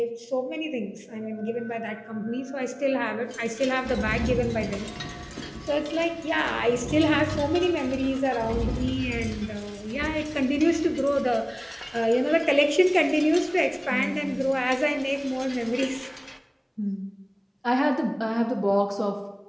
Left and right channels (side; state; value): both; identical; correlation 1.00